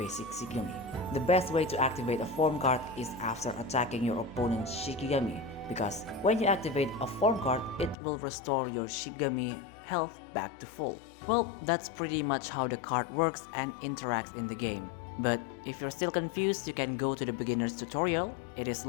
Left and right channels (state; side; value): drops out; right; at 8.0 s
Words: Shigami. The best way to activate a form card is after attacking your opponent's Shikigami, because when you activate a form card, it will restore your Shigami health back to full. Well, that's pretty much how the card works and interacts in the game. But if you're still confused, you can go to the beginner's tutorial. It is